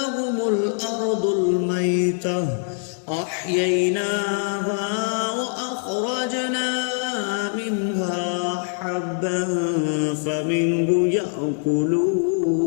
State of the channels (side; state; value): right; silent; 58 dB below the other